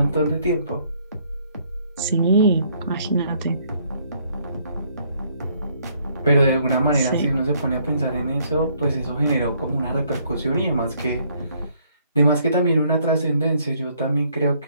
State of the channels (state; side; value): inverted; both; correlation -0.67